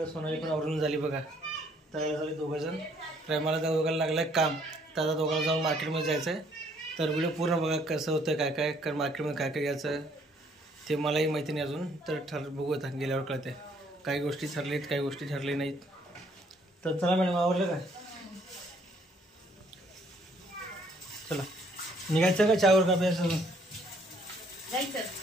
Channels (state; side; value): normal; both; correlation 0.65